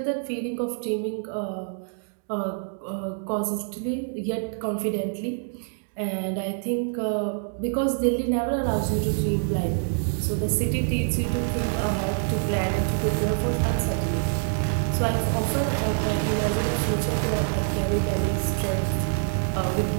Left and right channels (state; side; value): silent; left; 61 dB below the other